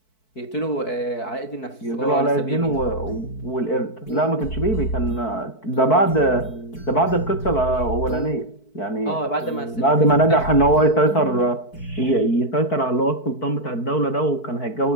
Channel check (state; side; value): late; right; 4.6 ms